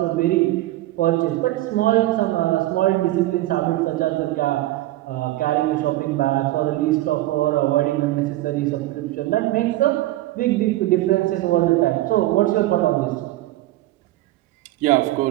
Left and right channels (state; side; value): quieter; left; 16.5 dB